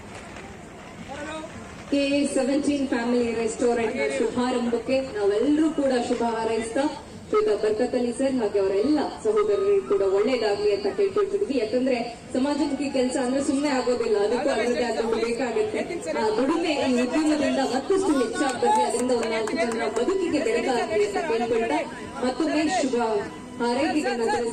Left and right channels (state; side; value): identical; both; correlation 1.00